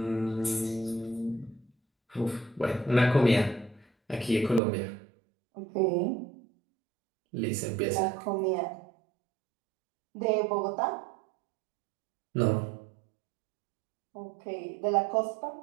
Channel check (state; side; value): drops out; left; at 4.6 s